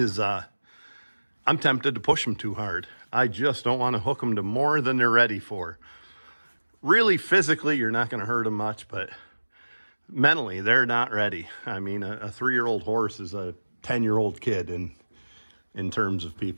I'm tempted to push them too hard. I just don't want to hook them to more than they're ready for. Really, physically, you're not going to hurt them much, but mentally, they're not ready. I mean, a 3-year-old horse is a 10-year-old kid in terms of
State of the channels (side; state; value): both; inverted; correlation -1.00